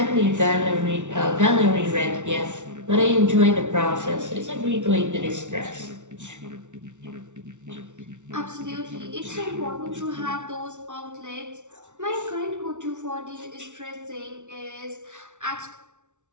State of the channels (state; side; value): late; left; 0.85 ms